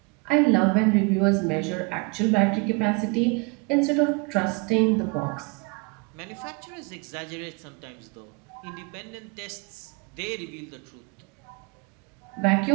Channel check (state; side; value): quieter; left; 30.2 dB